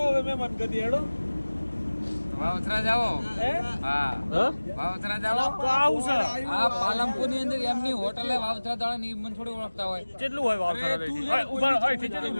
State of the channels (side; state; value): both; inverted; correlation -1.00